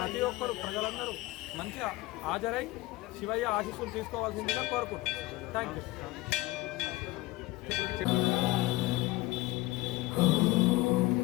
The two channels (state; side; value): quieter; right; 19.9 dB